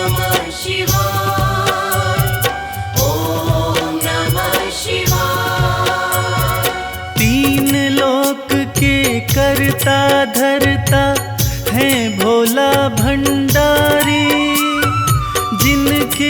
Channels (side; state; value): both; identical; correlation 1.00